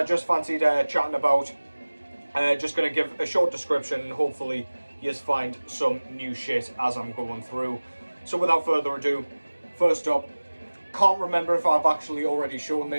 just fancied chatting about. Just going to give a short description and hopefully you find some new shit as I'm going through. So without further ado, first up, can't remember if I've actually already shown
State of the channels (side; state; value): both; inverted; correlation -1.00